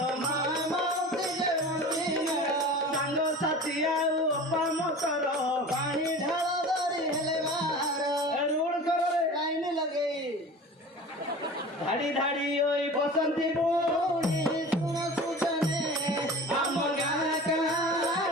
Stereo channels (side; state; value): both; normal; correlation 0.37